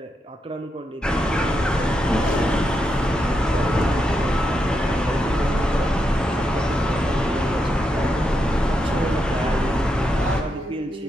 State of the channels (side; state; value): both; normal; correlation 0.83